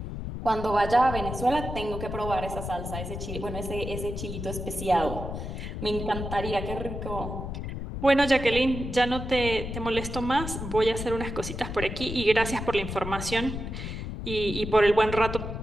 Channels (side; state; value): left; noise; rumble, 6 dB below the sound